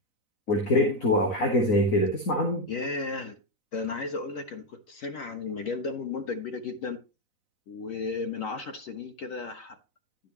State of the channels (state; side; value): late; right; 4.0 ms